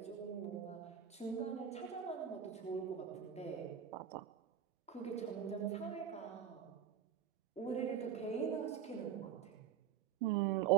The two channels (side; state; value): left; quieter; 8.6 dB